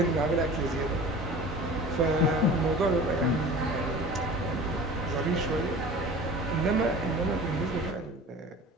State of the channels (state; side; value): normal; both; correlation 0.40